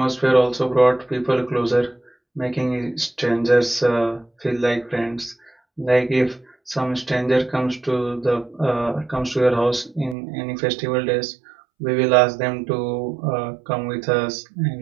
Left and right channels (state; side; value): drops out; left; at 10.2 s